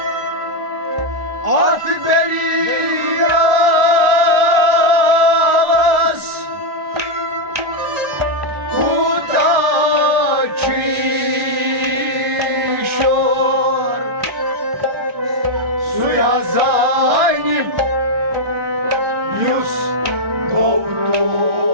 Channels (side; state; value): left; late; 1.3 ms